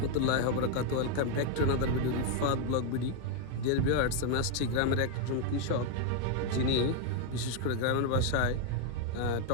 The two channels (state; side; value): different; both; correlation 0.01